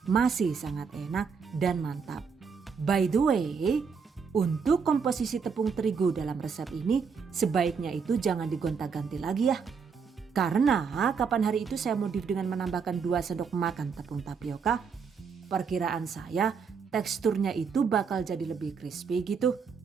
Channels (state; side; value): quieter; left; 5.9 dB